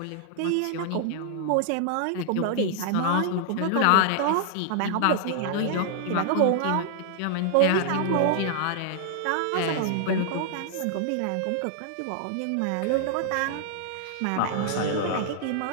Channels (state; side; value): different; both; correlation -0.01